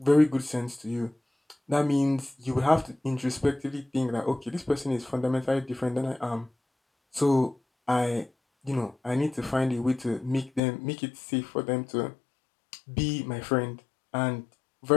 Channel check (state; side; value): drops out; right; at 10.6 s